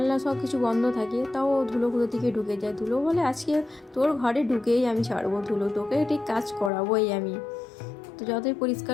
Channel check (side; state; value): right; drops out; at 6.7 s